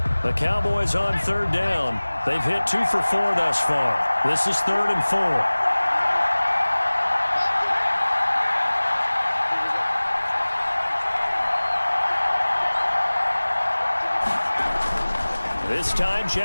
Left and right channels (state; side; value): inverted; both; correlation -1.00